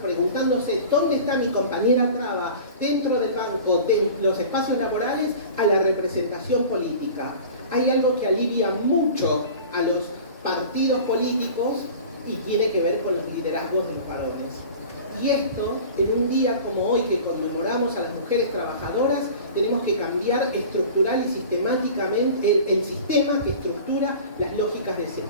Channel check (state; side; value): inverted; both; correlation -0.39